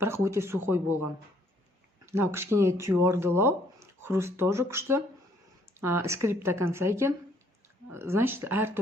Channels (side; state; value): both; normal; correlation 0.64